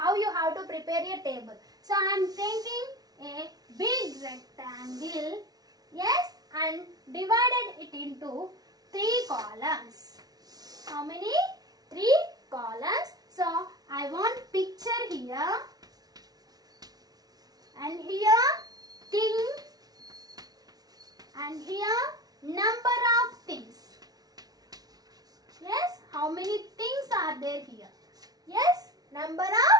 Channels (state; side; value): late; left; 0.19 ms